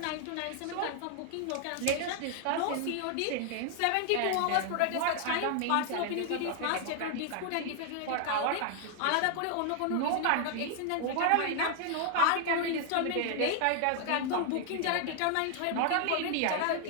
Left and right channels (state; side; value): different; both; correlation 0.00